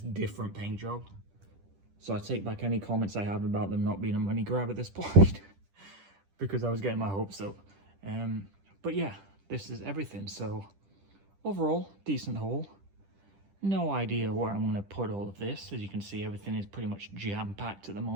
different paint job. So I take back any comments I have about them not being a money grab at this point, because I was getting my hopes up. But yeah, this is everything. So overall, decent haul. No idea where I'm going to put all of this. As you can see, everything is pretty much jam-packed at the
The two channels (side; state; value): left; late; 10 ms